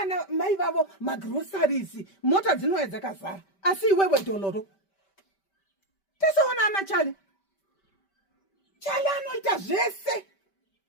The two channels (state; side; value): late; right; 5.1 ms